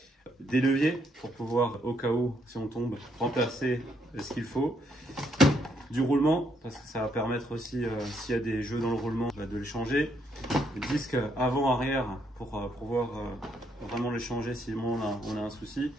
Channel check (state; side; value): normal; both; correlation 0.74